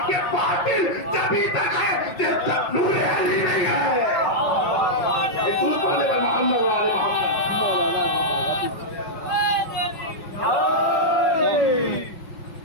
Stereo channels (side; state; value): right; late; 5.5 ms